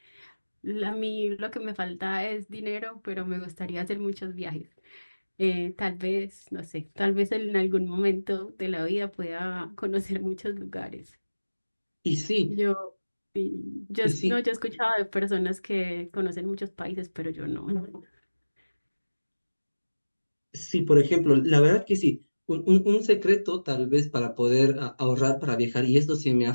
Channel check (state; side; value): inverted; both; correlation -1.00